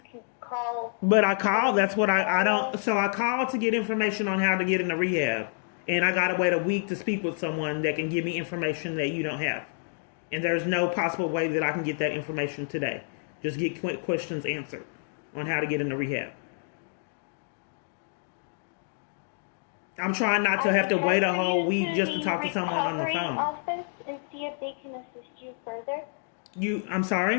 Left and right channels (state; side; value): silent; right; digital silence